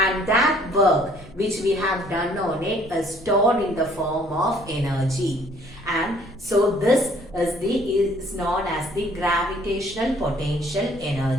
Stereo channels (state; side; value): noise; left; rumble, 20 dB below the sound